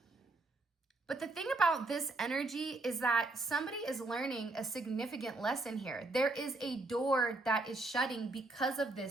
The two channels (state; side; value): quieter; left; 3.1 dB